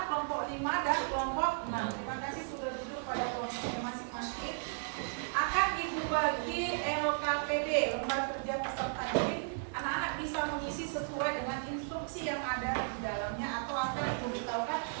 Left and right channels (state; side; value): silent; left; 55 dB below the other